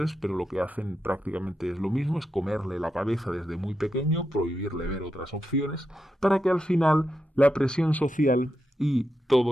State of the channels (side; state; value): both; normal; correlation 0.86